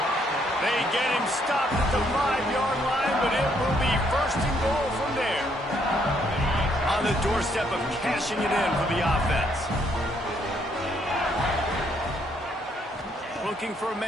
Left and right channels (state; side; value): normal; both; correlation 0.71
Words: They get him stopped at the 5-yard line, but it will be first and goal from there. On the doorstep of cashing it in for the offense. Looking for a